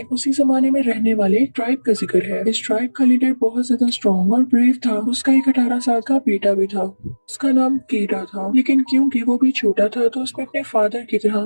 उसी जमाने में रहने वाले एक ट्राइब का जिक्र है। इस ट्राइब का लीडर बहुत ज्यादा स्ट्रॉन्ग और ब्रेव था। उसका एक 18 साल का बेटा भी था। उसका नाम केटा था, लेकिन क्योंकि वो भी छोटा था तो उसमें अपने फादर की तरह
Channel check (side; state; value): both; inverted; correlation -1.00